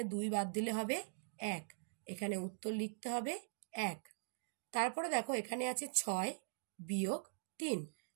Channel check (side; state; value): left; silent; digital silence